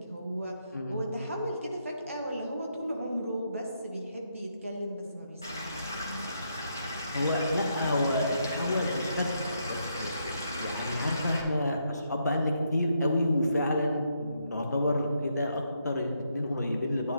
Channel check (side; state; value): both; inverted; correlation -0.78